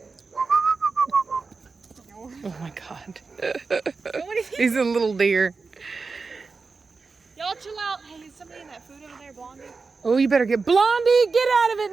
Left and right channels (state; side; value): quieter; left; 4.4 dB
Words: Oh my god. He's a little deer. Y'all chill out. Hey, is somebody in that food over there, Blondie? Oh, you better get Blondie, get out of it